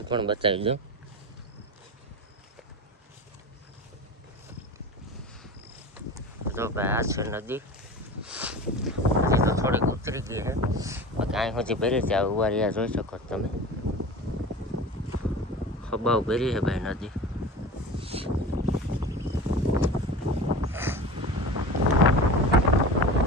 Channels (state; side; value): normal; both; correlation 0.33